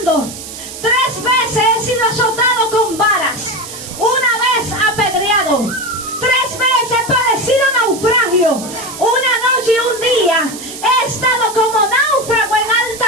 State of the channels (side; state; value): right; noise; hiss, 12 dB below the sound